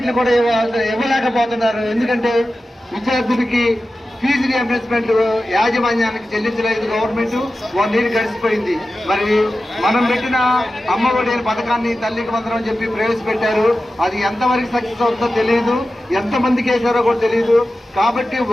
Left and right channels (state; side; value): normal; both; correlation 0.94